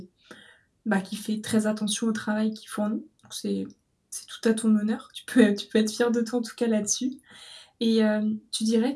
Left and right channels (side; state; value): both; identical; correlation 1.00